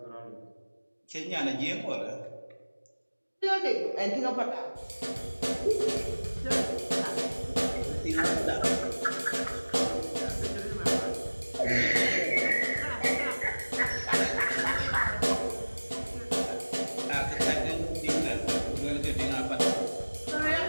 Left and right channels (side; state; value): both; inverted; correlation -1.00